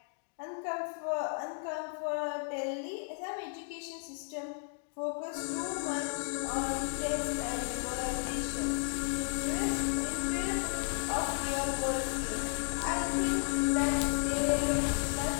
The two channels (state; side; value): silent; right; 55 dB below the other